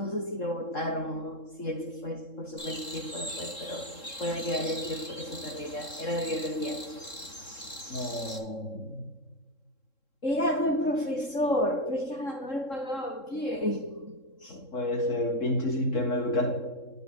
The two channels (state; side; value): late; right; 3.7 ms